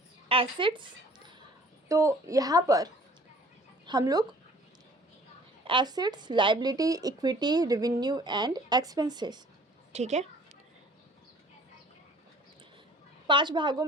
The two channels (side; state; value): both; normal; correlation 0.51